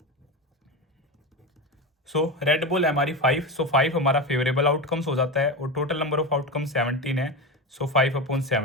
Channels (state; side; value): normal; both; correlation 0.20